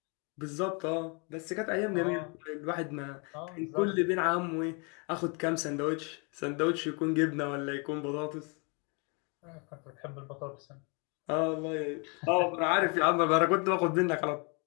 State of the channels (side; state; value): right; quieter; 33.8 dB